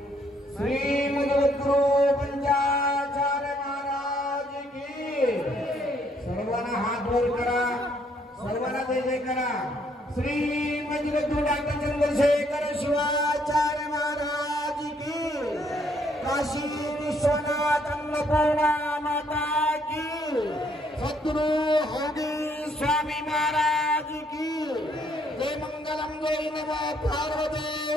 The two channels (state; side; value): normal; both; correlation 0.68